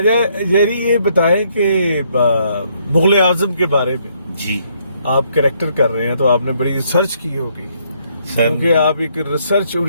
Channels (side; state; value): both; inverted; correlation -0.70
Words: جیری، یہ بتائیں کہ مغل اعظم کے بارے میں جی آپ کریکٹر کر رہے ہیں تو آپ نے بڑی ریسرچ کی ہوگی، سر، کیونکہ آپ ایک ریسرچ